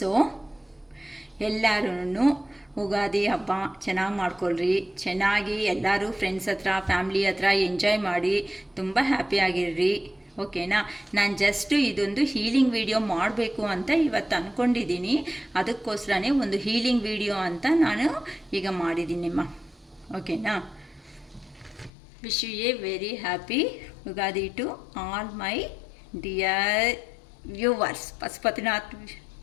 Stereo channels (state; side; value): drops out; right; at 21.9 s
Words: ಎಲ್ಲರೂ ಉಗಾದಿ ಹಬ್ಬ ಚೆನ್ನಾಗಿ ಮಾಡ್ಕೊಳ್ರಿ, ಚೆನ್ನಾಗಿ ಎಲ್ಲರೂ ಫ್ರೆಂಡ್ಸ್ ಹತ್ರ ಫ್ಯಾಮ್ಲಿ ಹತ್ರ ಎಂಜಾಯ್ ಮಾಡಿ ತುಂಬ ಹ್ಯಾಪಿಯಾಗಿರ್ರಿ. ಓಕೆನಾ? ನಾನು ಜಸ್ಟು ಇದೊಂದು ಹೀಲಿಂಗ್ ವಿಡಿಯೋ ಮಾಡಬೇಕು ಅಂತ ಇವತ್ತು ಅಂದ್ಕೊಂಡಿದ್ದೀನಿ. ಅದಕ್ಕೋಸ್ಕರನೇ ಒಂದು ಹೀಲಿಂಗ್ ವಿಡಿಯೋ ಅಂತ ನಾನು ಈಗ ಮಾಡಿದ್ದೀನಿಮ್ಮ. ಓಕೆನಾ? Wish you a very happy Ugadi to all my dear viewers, Pashupatinath